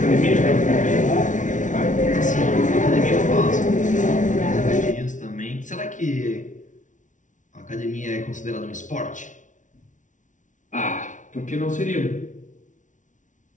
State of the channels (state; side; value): late; right; 0.37 ms